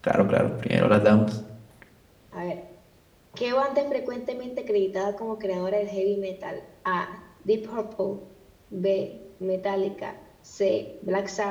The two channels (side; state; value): both; identical; correlation 1.00